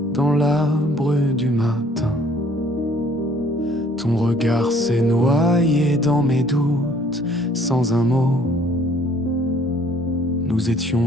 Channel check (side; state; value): both; normal; correlation 0.58